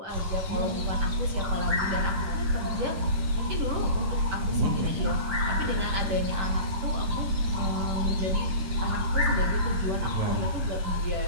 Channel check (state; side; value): late; left; 10 ms